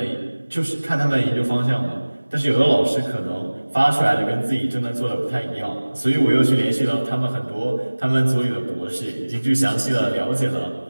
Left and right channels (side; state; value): both; inverted; correlation -1.00